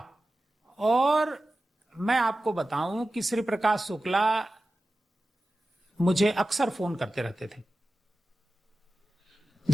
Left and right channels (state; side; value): normal; both; correlation 0.94